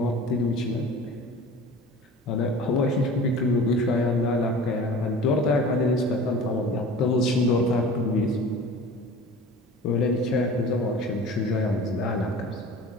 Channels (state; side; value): normal; both; correlation 0.40